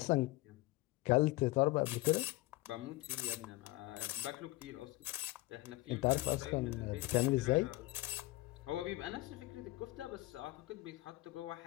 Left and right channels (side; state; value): right; quieter; 19.6 dB